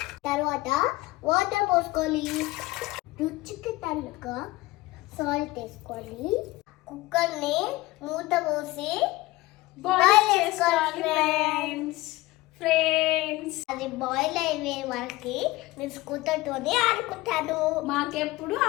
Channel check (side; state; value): right; quieter; 19.6 dB